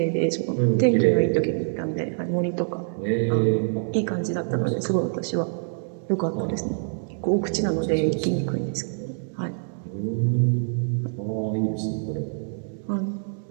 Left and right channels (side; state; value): left; silent; 62 dB below the other